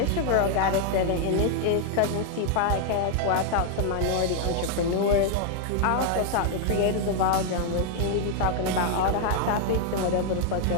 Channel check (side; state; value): both; different; correlation 0.00